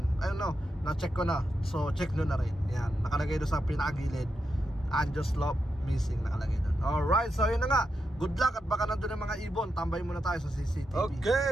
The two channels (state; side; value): normal; both; correlation 0.86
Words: ayun no, na-check ko na. So check nyo na rin, yan, nakalagay doon sa pinakagilid, Angel's Love missing, nakalagay doon. Alright, so yun na nga, good luck at baka nandun yung mga ibon. Tambay muna tayo sa CCTV.